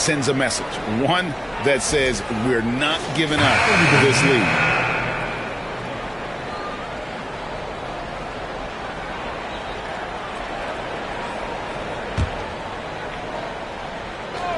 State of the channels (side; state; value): both; identical; correlation 1.00